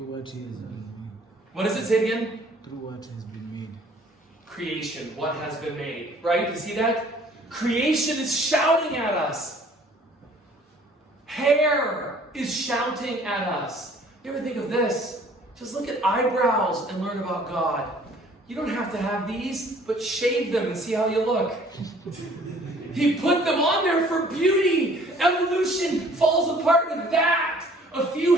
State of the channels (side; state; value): both; normal; correlation 0.55